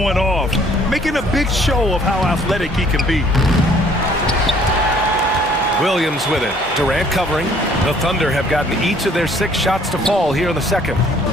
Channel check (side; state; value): both; normal; correlation 0.59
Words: off, making a big show of how athletic he can be. Williams with it. Durant covering. The Thunder have gotten each of their 6 shots to fall here in the second.